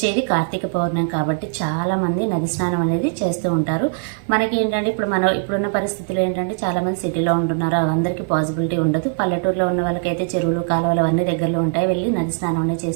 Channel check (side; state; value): left; silent; digital silence